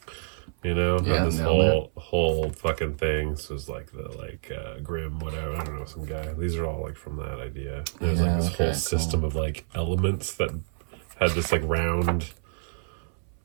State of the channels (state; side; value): silent; left; 59 dB below the other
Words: You know, yeah, this whole fucking thing. So it's like the Grim, whatever. I don't know, some guy. These are all like from that idea. There's like this whole system of like elements that had this like round.